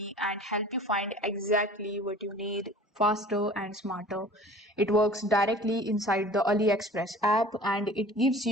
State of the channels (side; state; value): both; normal; correlation 0.45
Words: and help you find exactly what you need faster and smarter. It works directly inside the AliExpress app and it gives